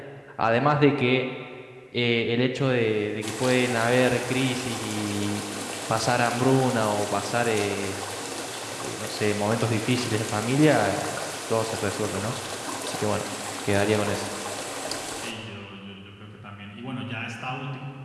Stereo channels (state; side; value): identical; both; correlation 1.00